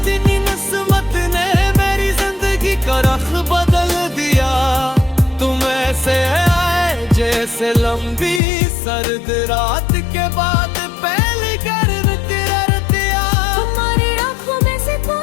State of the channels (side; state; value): right; drops out; at 8.4 s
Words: नस्मत ने मेरी जिंदगी का रख बदल दिया। तुम ऐसे आए जैसे लंबी सर्द रात के बाद पहली गर्म तिरतिया। तुम्हारी आंखों में से